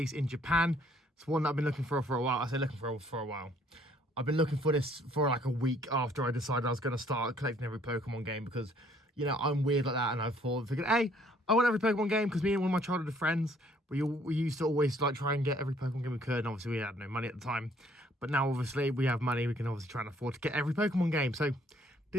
in Japan. It's one that I've been looking for a while. I say looking for a while. I've been looking for this for like a week after I decided I was going to start collecting every Pokemon game because, you know, I'm weird like that, and I figured, hey, I want every Pokemon game because me and one of my childhood friends, we used to always like try and get every Pokemon game we could, and obviously we had no money at the time. But now obviously we have money, we can obviously try and afford to get every Pokemon game. So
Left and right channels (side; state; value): both; normal; correlation 0.62